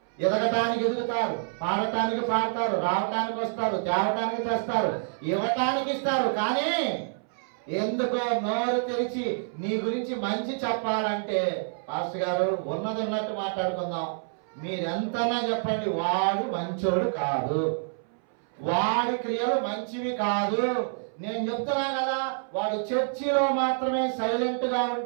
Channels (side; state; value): left; silent; 60 dB below the other